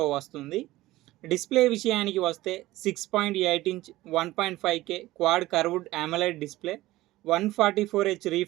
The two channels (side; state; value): left; quieter; 17.3 dB